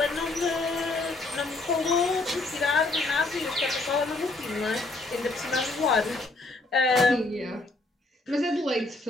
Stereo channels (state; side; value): quieter; right; 3.0 dB